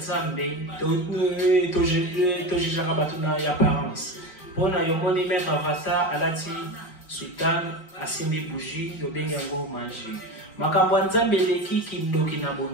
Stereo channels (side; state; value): right; late; 4.9 ms